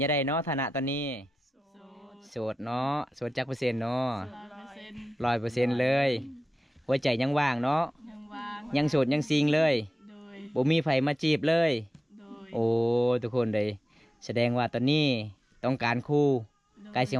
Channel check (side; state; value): both; normal; correlation 0.93